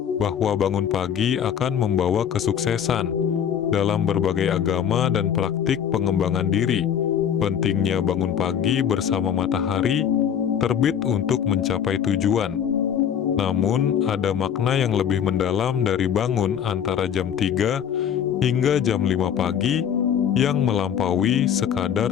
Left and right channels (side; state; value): right; quieter; 8.7 dB